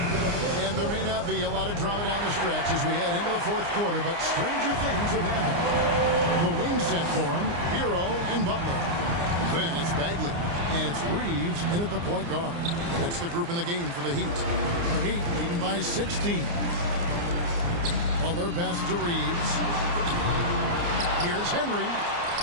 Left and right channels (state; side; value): late; left; 29 ms